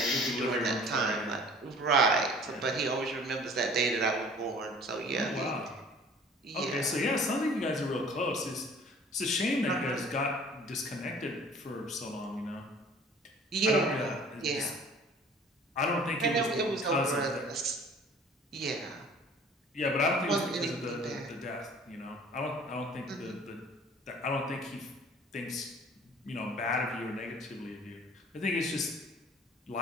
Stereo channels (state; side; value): normal; both; correlation 0.49